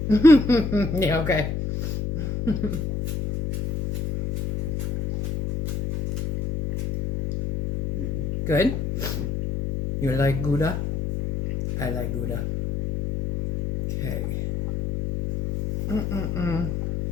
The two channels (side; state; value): left; noise; hum, 3 dB below the sound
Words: Yeah, okay. Good? Mm-hmm. You like Gouda? I like Gouda. Okay.